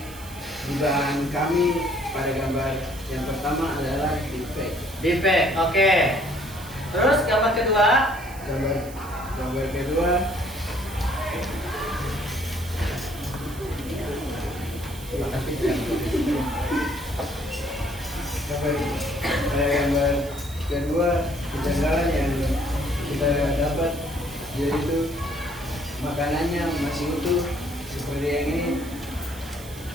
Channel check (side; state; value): right; noise; hiss, 18 dB below the sound